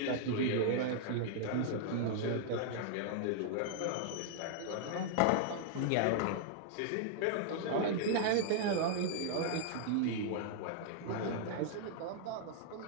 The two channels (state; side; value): different; both; correlation -0.01